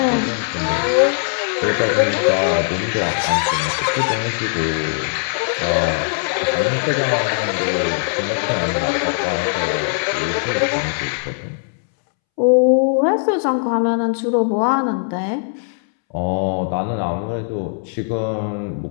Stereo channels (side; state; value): right; silent; 66 dB below the other